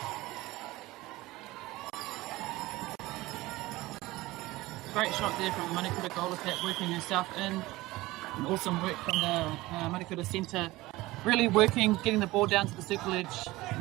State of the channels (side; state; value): left; quieter; 19.3 dB